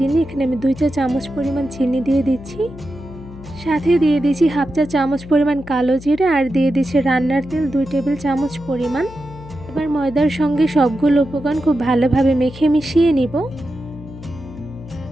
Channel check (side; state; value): left; noise; hum, 16 dB below the sound